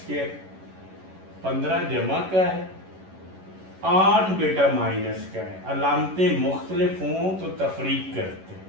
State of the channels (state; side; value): late; left; 11 ms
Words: 15 जमा का है, 8 बेटा माइनस का है, अलामतें मुख्तलिफ हों तो तफरीक करते हैं,